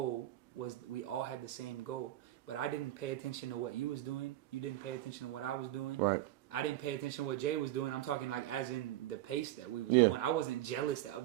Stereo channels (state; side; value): quieter; left; 14.6 dB